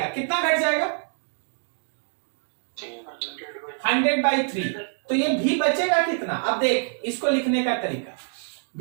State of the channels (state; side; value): silent; left; digital silence